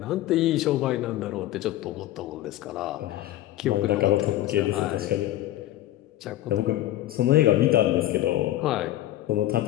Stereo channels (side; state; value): right; quieter; 14.4 dB